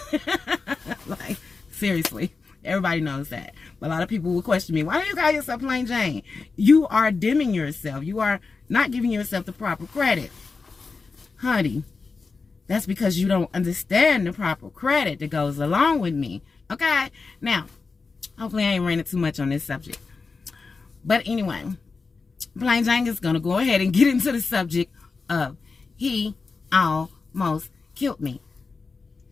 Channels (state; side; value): quieter; right; 4.4 dB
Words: Like, seriously. Everybody knows that. But a lot of people will question me, why do you call yourself Plain Jane? You are dimming yourself. You are not giving yourself the proper credit. Honey, that's because you don't understand the proper credit that goes along with me. Okay? Now, hopefully I ain't ranting too much on this subject. But anyway, Plain Jane is going to go ahead and get into the subject of he almost killed me.